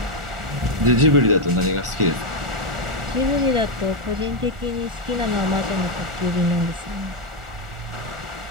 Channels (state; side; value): late; left; 1.4 ms